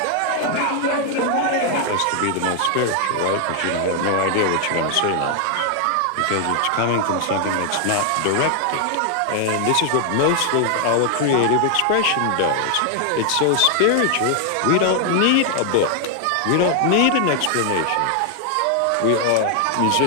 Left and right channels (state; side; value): different; both; correlation 0.00